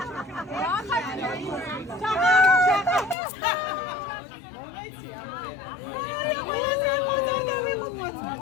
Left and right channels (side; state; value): right; drops out; at 3.2 s